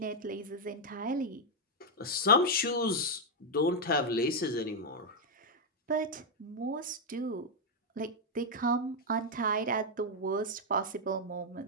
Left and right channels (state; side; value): normal; both; correlation -0.01